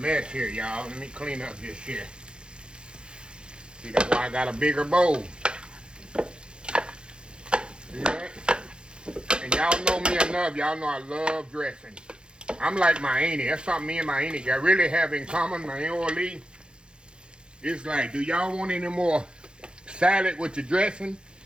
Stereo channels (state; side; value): late; left; 0.051 ms